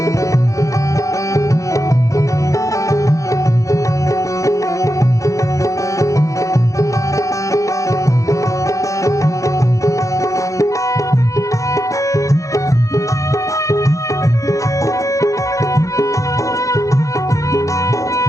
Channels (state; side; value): late; right; 0.15 ms